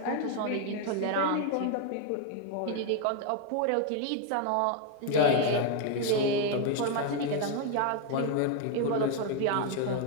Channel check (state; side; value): different; both; correlation 0.01